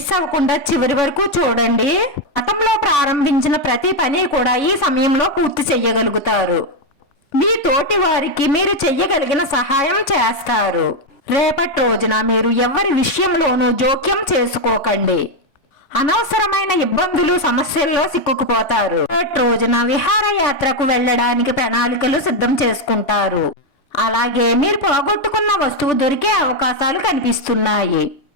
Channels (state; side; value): late; right; 3.6 ms